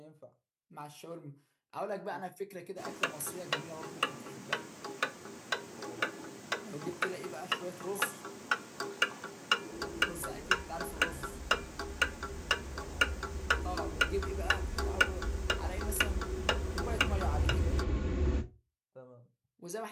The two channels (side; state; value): both; identical; correlation 1.00